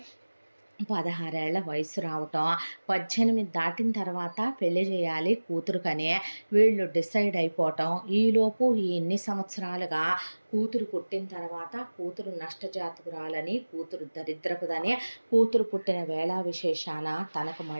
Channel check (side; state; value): both; inverted; correlation -1.00